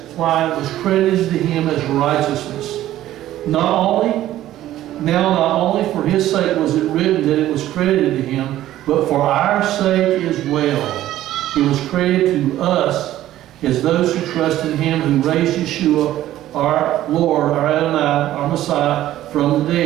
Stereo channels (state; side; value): quieter; left; 13.7 dB